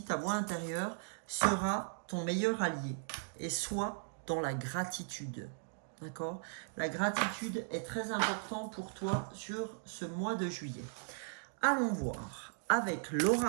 ta voix intérieure sera ton meilleur allié. Et sois dans la gratitude. D'accord? La gratitude est très importante pour toi sur ce mois de juillet. Allons voir avec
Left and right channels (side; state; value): left; silent; digital silence